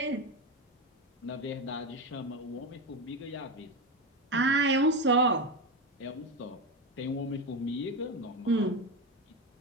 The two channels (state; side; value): normal; both; correlation 0.16